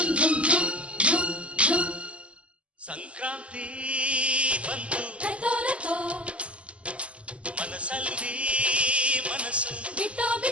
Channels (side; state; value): left; late; 0.058 ms